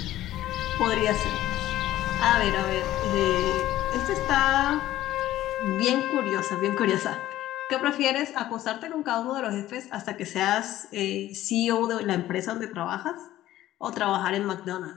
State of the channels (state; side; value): quieter; right; 14.3 dB